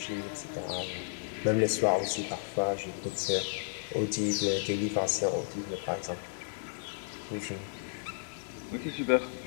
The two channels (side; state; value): right; silent; digital silence